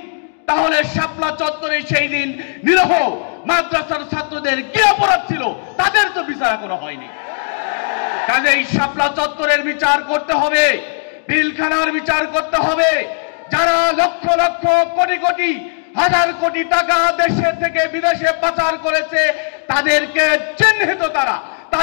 তাহলে শাপলা চত্বরে সেই দিন নিরীহ মাদ্রাসার ছাত্রদের কি অপরাধ ছিল, তাদের তো বিচার এখনো হয়নি। কাজেই শাপলা চত্বরের বিচার করতে হবে, পিলখানার বিচার করতে হবে। যারা লক্ষ লক্ষ কোটি কোটি হাজার কোটি টাকা দেশে থেকে বিদেশে পাচার করেছে তাদেরকে চিহ্নিত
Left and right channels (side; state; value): right; silent; 69 dB below the other